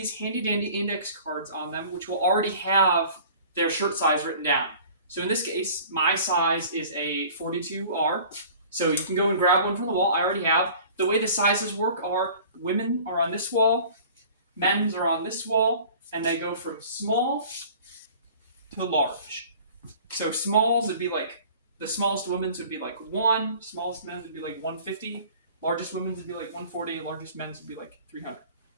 handy-dandy index cards on them, which will already have their shirt size written down. So in this case, my size is a 42R. So you can go and grab one from the wall. I already have. The way the sizes work are women are on this wall, men's are on this wall, and they go from small to large. So smalls would be like, the smallest women's would be like 1, smallest men's would be like 150, largest women's would be like 140, largest men's would be like 300.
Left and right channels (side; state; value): both; inverted; correlation -0.46